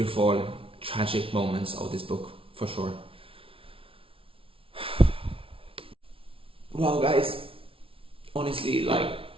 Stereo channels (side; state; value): left; late; 0.26 ms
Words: tragic moments of this book, for sure. Wow, guys, honestly, like,